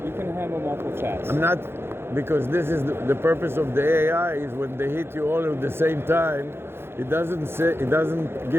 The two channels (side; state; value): left; late; 0.11 ms